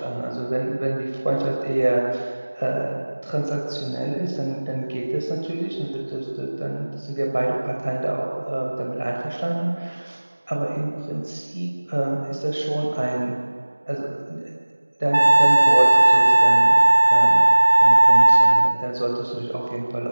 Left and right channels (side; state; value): both; inverted; correlation -1.00